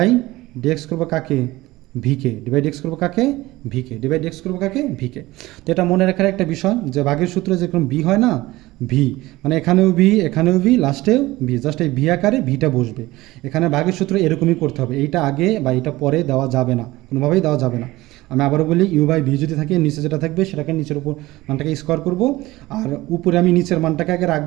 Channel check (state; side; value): quieter; left; 18.7 dB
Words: ডি এক্স করবো কাকে, ভিকে, ডিভাইড এক্স করবো কাকে, ভিকে, ডিভাইড এক্স করবো কাকে, ভিকে। তো এটা মনে রাখার একটা বিষয় যে ভাগের সূত্রে যেরকম ভি হয় না, ভি মানে এখানেও ভি লাস্টেও ভি, জাস্ট এই ভি আকারে ভিটা বসবে। এখানে ভাগের সূত্র এরকমই করতে হবে, এইটা আগে বা এইটা পরে দেওয়া যাবে না, কোনোভাবেই দেওয়া যাবে না। আমি আবারও বলি, ইউ বাই ভি যদি থাকে নিচে যেটা থাকবে সেটাকে নিচের উপর মানটাকে স্কোয়ার করবো, আর উপরে আমি নিচের মানটাকে আগে